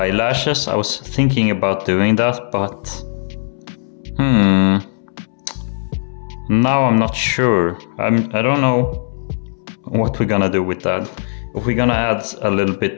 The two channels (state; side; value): silent; right; 67 dB below the other